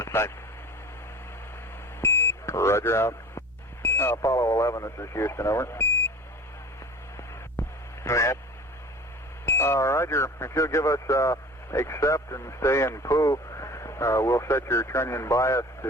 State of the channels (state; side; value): normal; both; correlation 0.40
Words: sight. Roger, out. Apollo 11, this is Houston. Over. Go ahead. Roger, if you'll give us accept and stay in POO, we'll set your trunnion bias